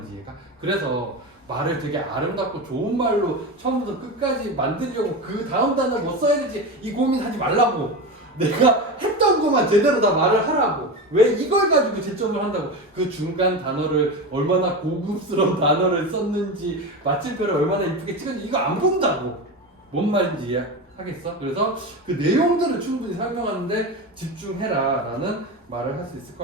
이해가? 그래서 말을 되게 아름답고 좋은 말로 처음부터 끝까지 만들려고 그 다음 단어를 뭐 써야 되지 이 고민하지 말라고. 내가 했던 것만 제대로 다 말을 하라고. 왜 이걸 가지고 채점을 한다고. 그 중간 단어를 얼마나 고급스러운 단어를 썼는지 마침표를 얼마나 이쁘게 찍었는지 이거 안 본다고. 뭔 말인지 이해하겠어? 그래서 그 내용들을 충분히 설명하는데 집중해라 라는 말을 할 수 있을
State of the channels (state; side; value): normal; both; correlation 0.22